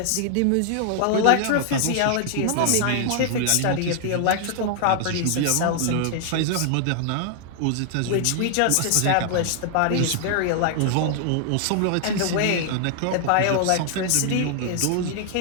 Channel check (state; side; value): different; both; correlation 0.00